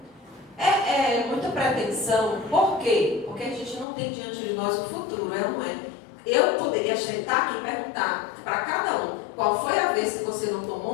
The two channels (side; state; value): right; drops out; at 3.9 s